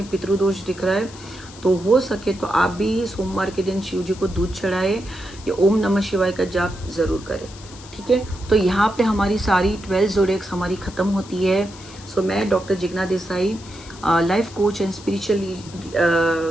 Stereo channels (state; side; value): noise; left; hiss, 19 dB below the sound